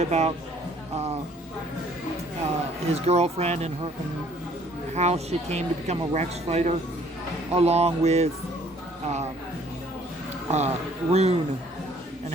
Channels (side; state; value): both; normal; correlation 0.60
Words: about his girlfriend and how she came to become a Rex fighter, along with Rune and